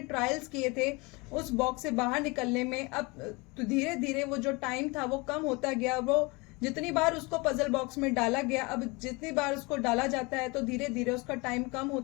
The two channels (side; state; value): right; quieter; 26.4 dB